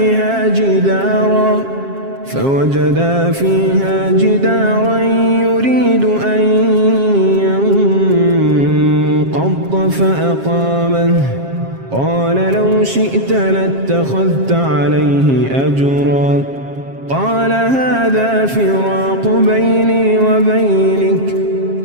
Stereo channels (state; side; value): late; left; 7.4 ms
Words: فيها جدارا يريد أن ينقض فأقامه قال لو شئت لاتخذت عليه أجرا قال هذا فراق بيني وبينك